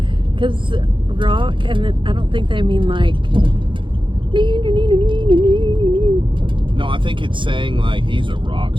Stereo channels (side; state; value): left; late; 0.24 ms